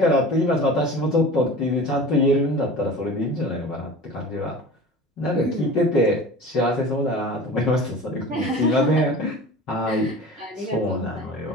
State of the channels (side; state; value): both; normal; correlation 0.37